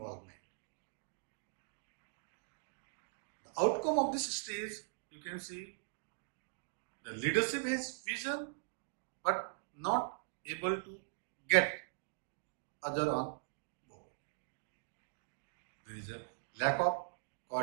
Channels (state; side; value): silent; left; digital silence